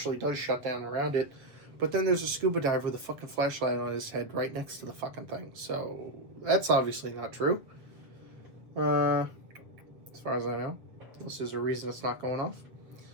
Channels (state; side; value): late; left; 7.8 ms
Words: does shut down around it. But then there's a scuba diver with a fucking flashlight on his head right next to the fucking thing. So that's obviously not true. As far as I know. Unless there's a reason it's not going off.